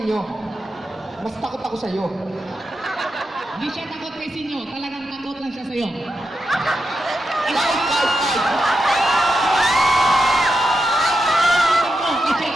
Mas takot ako sa'yo. Hindi siya takot kay Sinyo, talagang takot lang siya sa'yo. Live!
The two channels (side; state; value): both; normal; correlation 0.87